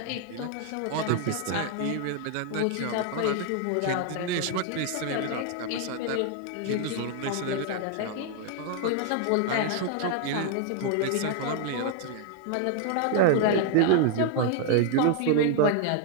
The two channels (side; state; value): both; different; correlation 0.00